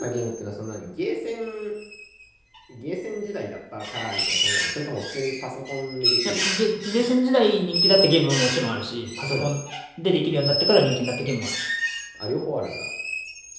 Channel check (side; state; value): both; identical; correlation 1.00